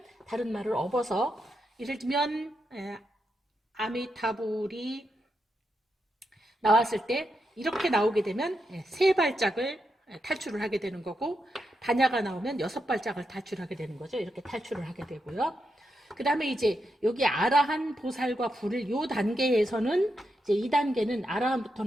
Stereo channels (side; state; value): both; normal; correlation 0.84